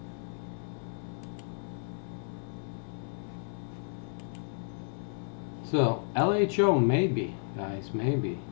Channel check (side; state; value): right; silent; 56 dB below the other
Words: So, LHO, maybe, guys, maybe.